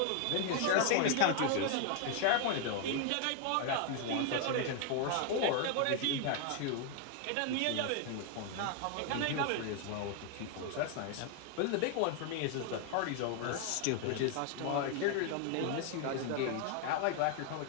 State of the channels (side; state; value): both; different; correlation 0.00